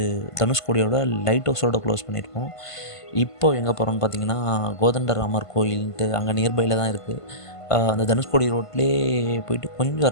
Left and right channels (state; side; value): late; right; 1.5 ms